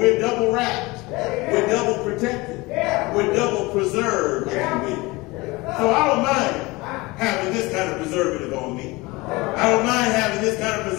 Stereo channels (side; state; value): right; quieter; 22.9 dB